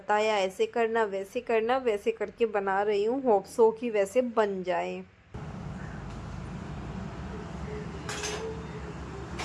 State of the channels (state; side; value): identical; both; correlation 1.00